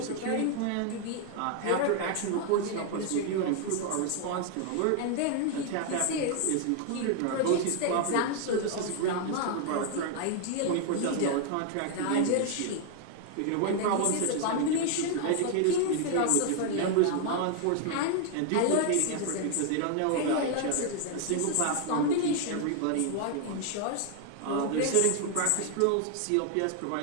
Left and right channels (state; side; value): different; both; correlation 0.00